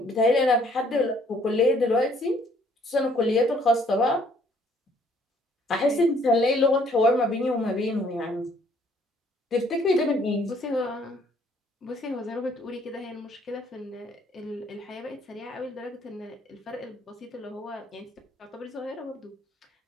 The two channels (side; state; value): both; normal; correlation 0.63